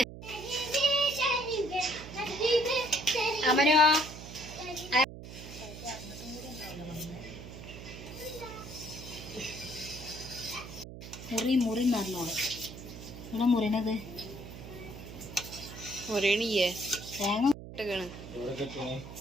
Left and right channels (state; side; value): noise; right; hum, 12 dB below the sound